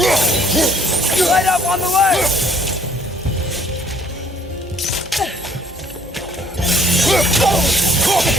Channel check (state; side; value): normal; both; correlation 0.61